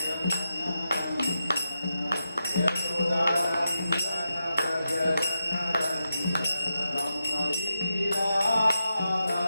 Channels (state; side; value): inverted; both; correlation -0.88